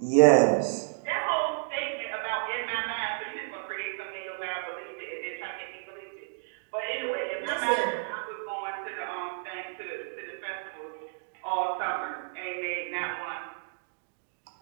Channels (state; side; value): silent; left; digital silence